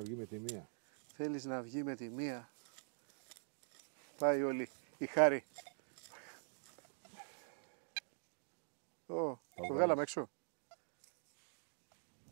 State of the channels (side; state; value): left; silent; digital silence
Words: με τη μία. Θέλεις να βγει με τη μία. Πάει όλη η χάρη. Το βγάλαμε έξω.